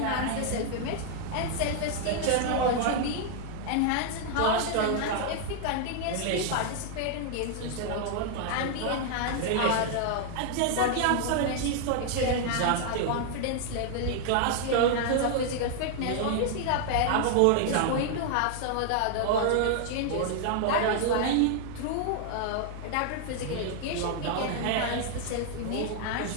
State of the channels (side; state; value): both; different; correlation 0.00